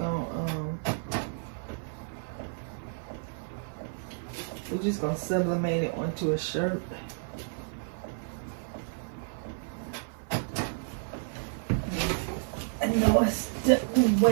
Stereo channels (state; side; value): silent; left; 57 dB below the other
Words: gonna sublimate it onto a shirt. I know I stepped